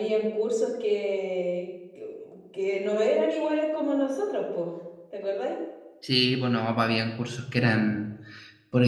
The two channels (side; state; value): both; identical; correlation 1.00